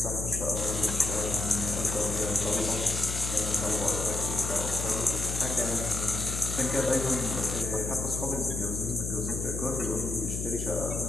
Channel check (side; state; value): left; noise; hum, 4 dB below the sound